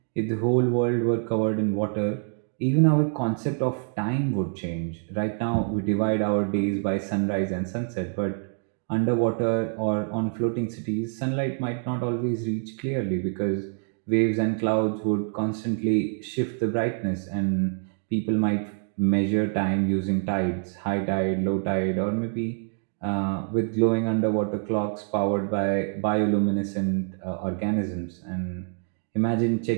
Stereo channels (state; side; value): silent; left; 57 dB below the other